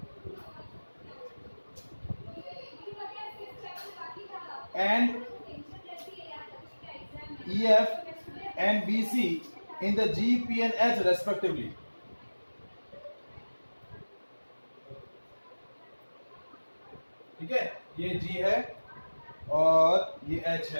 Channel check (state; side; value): inverted; both; correlation -1.00